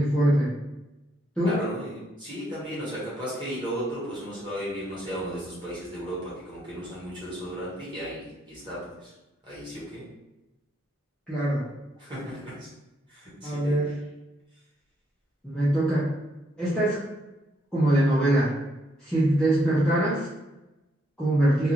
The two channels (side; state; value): both; normal; correlation 0.75